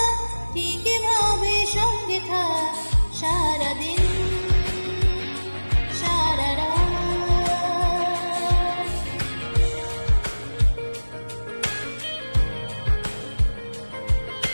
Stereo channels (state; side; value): inverted; both; correlation -1.00